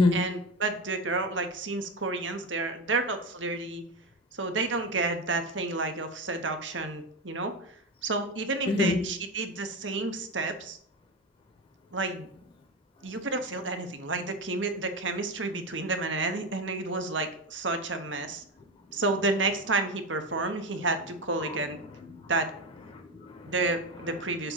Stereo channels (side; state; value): both; normal; correlation 0.19